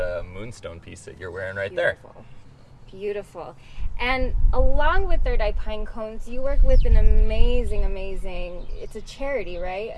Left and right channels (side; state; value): both; identical; correlation 1.00